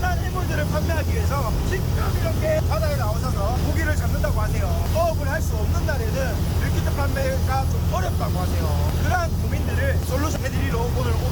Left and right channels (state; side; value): identical; both; correlation 1.00